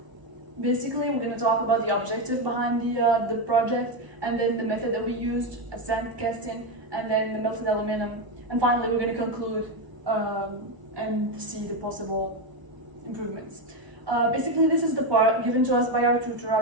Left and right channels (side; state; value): left; late; 1.0 ms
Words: Basically, we're going to talk about the objective behind the project, and then the method that we used, sand casting, and then the melted aluminum. And finally, we're going to conclude and see the possible improvements. Basically, this is the part given to us by our tutor